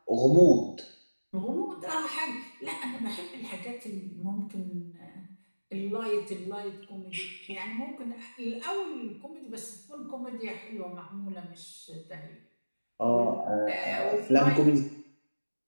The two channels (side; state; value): both; inverted; correlation -1.00